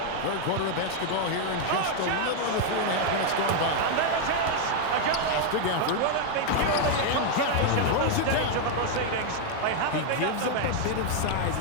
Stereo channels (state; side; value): different; both; correlation 0.01